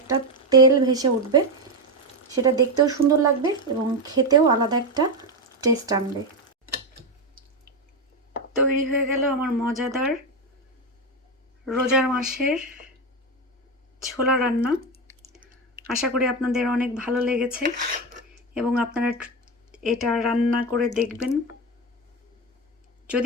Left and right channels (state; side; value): normal; both; correlation 0.12